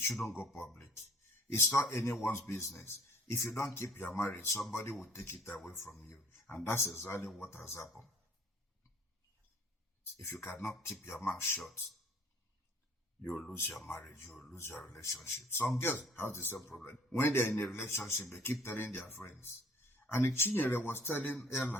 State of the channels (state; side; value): normal; both; correlation 0.55